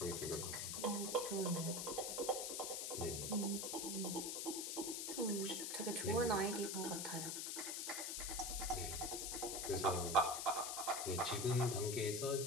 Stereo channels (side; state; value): left; noise; hiss, 2 dB below the sound